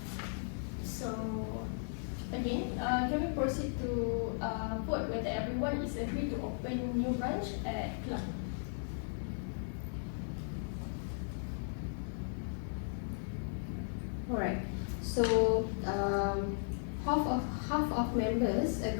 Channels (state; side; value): silent; right; digital silence